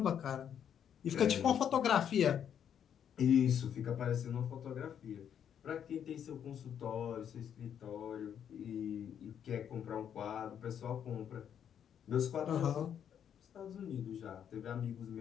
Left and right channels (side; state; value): right; quieter; 8.8 dB